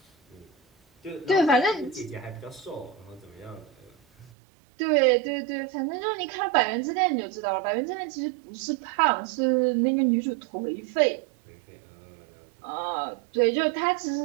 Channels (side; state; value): left; drops out; at 4.3 s